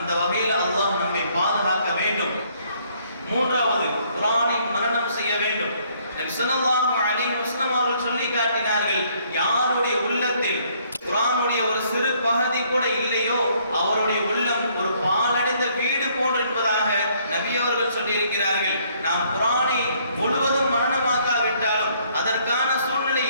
வகையில் அல்லாஹ் நம்மை பாதுகாக்க வேண்டும். மூன்றாவது, குர்ஆனை மனனம் செய்ய வேண்டும். ஸல்லல்லாஹு அலைஹி வஸல்லம் அவர்கள் சொல்லி காட்டினார்கள், யாருடைய உள்ளத்தில் குர்ஆனுடைய ஒரு சிறு பகுதி கூட இல்லையோ அவருடைய உள்ளம் ஒரு பாலடைந்த வீடு போன்று என்பதாக நபி அவர்கள் சொல்லி இருக்கிறார்கள். நாம் குர்ஆனை முழுவதும் மனனமாக்காவிட்டாலும், அதற்கான சூழ்நிலை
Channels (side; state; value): both; inverted; correlation -0.65